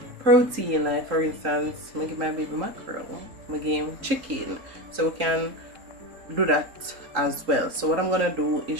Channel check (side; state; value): left; late; 3.8 ms